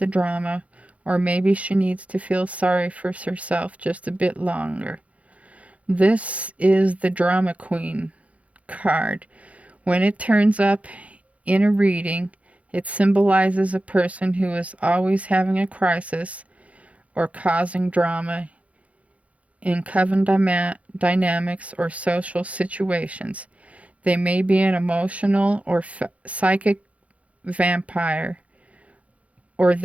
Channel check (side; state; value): left; late; 0.065 ms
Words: drama, or maybe she needs to feel sorry for herself just a bit longer. This is the Drama Queen card. When it turns up in a reading, It symbolizes a person who is always having a crisis or causing drama in coven dynamics or social situations. They may be an emotional or psychic vampire, or